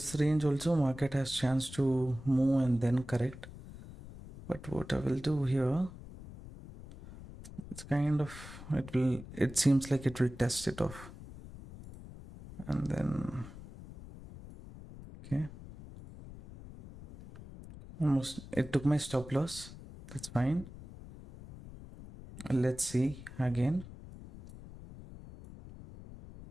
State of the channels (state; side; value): noise; left; rumble, 15 dB below the sound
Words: range also market has chance to move and then correct. But what I will do here, it's kind of, it seems like it will test it off. And then, okay. Almost, it took my stop loss. That's fine. Let's see again.